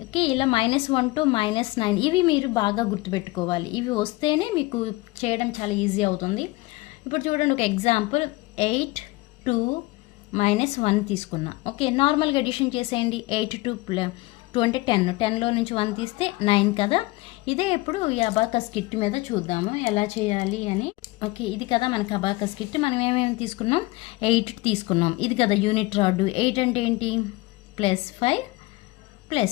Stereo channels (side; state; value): right; quieter; 21.5 dB